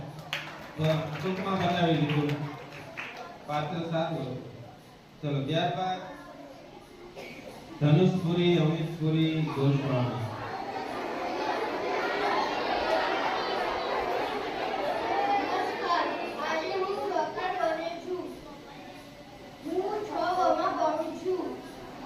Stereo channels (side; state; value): both; identical; correlation 1.00